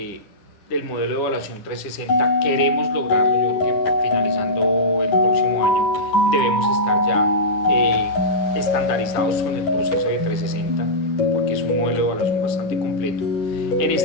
modelo de evaluación 360, queremos lograrlo. Yo creo que finalizando el próximo año debemos estar ya estandarizados con el proceso de 360, porque es un modelo de evaluación bastante completo. En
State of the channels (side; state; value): right; late; 10 ms